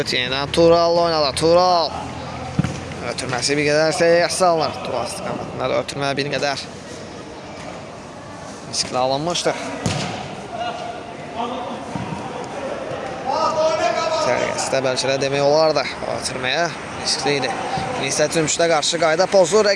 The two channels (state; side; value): identical; both; correlation 1.00